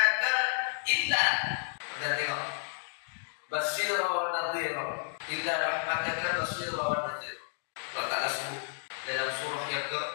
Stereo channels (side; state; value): right; silent; digital silence